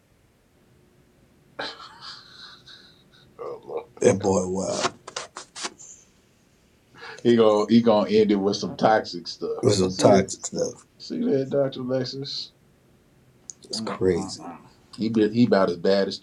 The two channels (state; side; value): identical; both; correlation 1.00